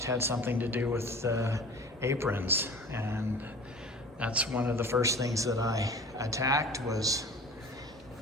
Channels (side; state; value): both; normal; correlation 0.41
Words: had something to do with aprons, and that's one of the first things that I attacked was